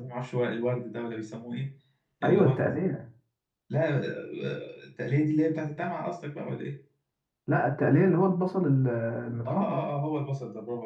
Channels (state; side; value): identical; both; correlation 1.00